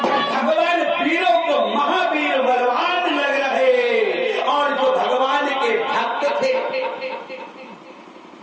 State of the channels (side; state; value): both; identical; correlation 1.00